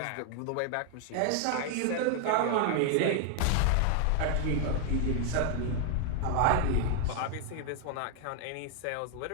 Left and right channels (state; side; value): different; both; correlation 0.00